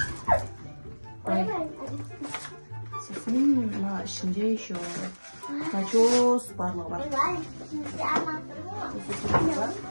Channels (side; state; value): both; inverted; correlation -1.00